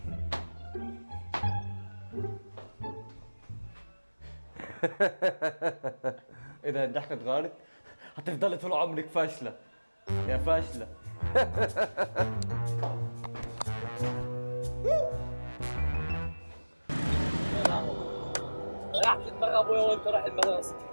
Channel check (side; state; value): both; inverted; correlation -1.00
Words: اذا الضحكه اتغيرت هتفضلي طول عمرك فاشله يا فاشله. ريحت دماغ ابويا وانت رايح المدرسه.